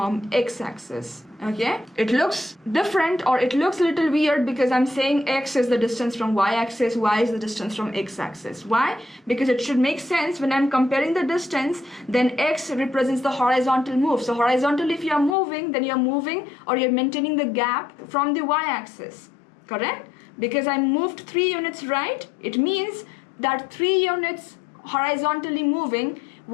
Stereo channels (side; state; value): right; drops out; at 15.4 s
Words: x-axis. Okay, it looks different, or it looks a little weird because I'm saying x is the distance from y-axis, y is the distance from x-axis. Why? Because it should make sense when I'm comparing the distance, then x represents the horizontal move. So horizontal, if you're moving, then you're moving or you're maintaining the gap from the y-axis, correct? Because I moved 3 units right, it means that 3 units horizontally moving